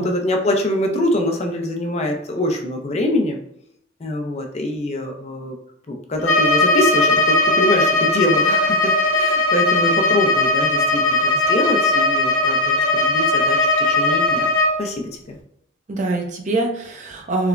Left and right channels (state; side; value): normal; both; correlation 0.09